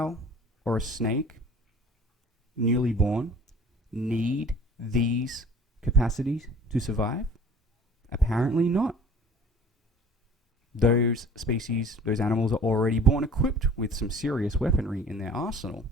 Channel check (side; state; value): both; normal; correlation 0.47